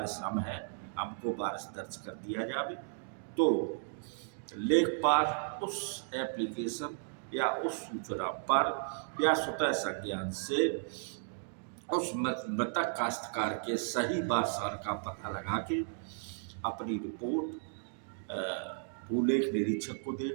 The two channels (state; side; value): silent; left; digital silence